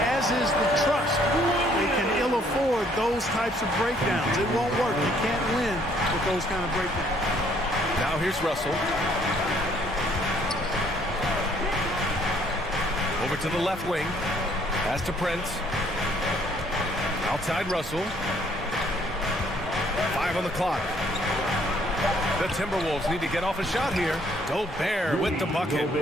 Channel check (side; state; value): both; normal; correlation 0.64